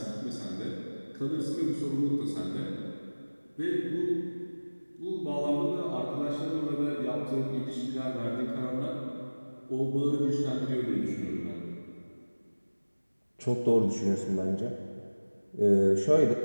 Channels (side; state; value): both; inverted; correlation -1.00